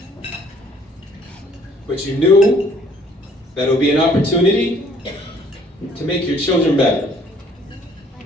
But you knew that it would be an opportunity to make your children better.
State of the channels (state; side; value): normal; both; correlation 0.60